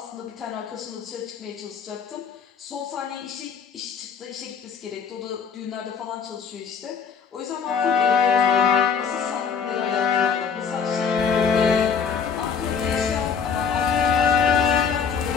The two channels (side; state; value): right; quieter; 6.2 dB